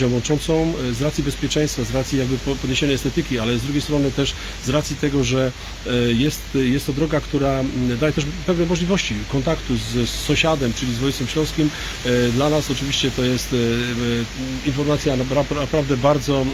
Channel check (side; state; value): both; identical; correlation 1.00